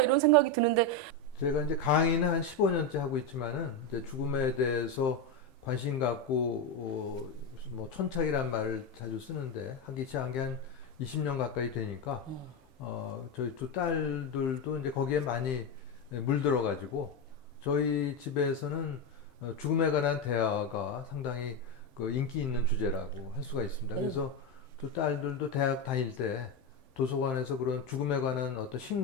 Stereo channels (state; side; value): normal; both; correlation 0.11